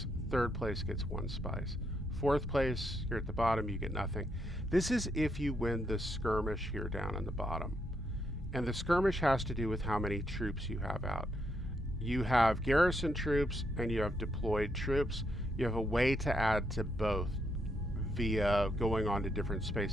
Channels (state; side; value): normal; both; correlation 0.77